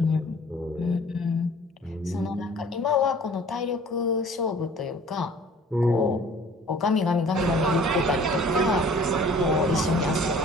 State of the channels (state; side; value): normal; both; correlation 0.50